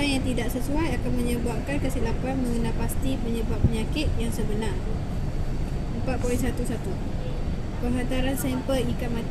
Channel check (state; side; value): identical; both; correlation 1.00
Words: yang tidak sesuai akan menyebabkan kesilapan mengenal pasti penyebab penyakit yang sebenar. 4.11 Penghantaran sampel ikan